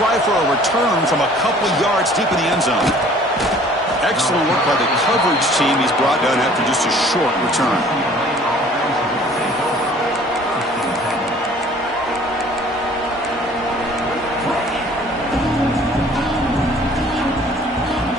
for a return from a couple yards deep in the end zone. Excellent work by the coverage team. He's brought down after just a short return.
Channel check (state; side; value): normal; both; correlation 0.53